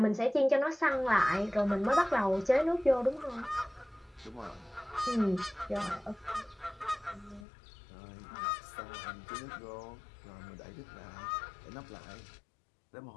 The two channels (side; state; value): right; drops out; at 7.5 s